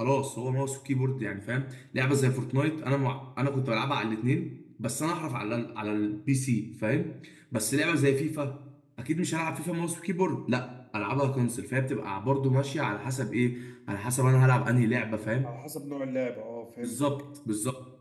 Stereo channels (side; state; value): both; identical; correlation 1.00